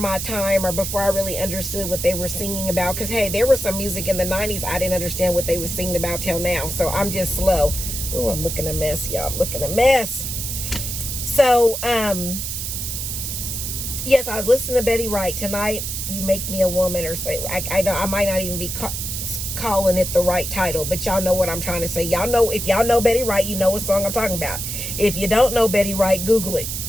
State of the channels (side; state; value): right; noise; hiss, 4 dB below the sound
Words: time or before I really understood what they were singing about. Because, hey, there was some music in the 90s I didn't understand what they were singing about till now. So I'm just slow. Oh, I'm looking a mess, y'all. I'm looking a mess. So, yes, I was listening to Betty Wright. Tonight, You Make Me a Woman, or say, I might not even be calling it the right title, but y'all know what I'm trying to say. Y'all know, if y'all know Betty Wright, you know what song I'm talking about. If you don't know Betty Wright, Google it,